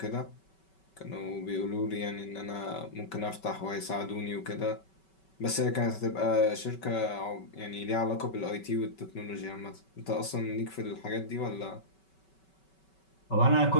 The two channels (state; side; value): late; right; 5.3 ms